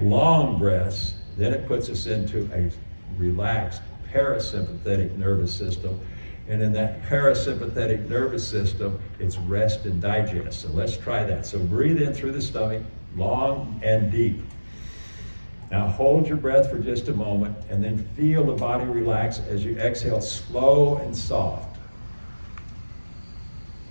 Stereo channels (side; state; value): both; inverted; correlation -1.00